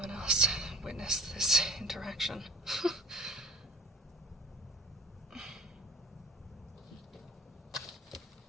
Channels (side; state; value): both; normal; correlation 0.49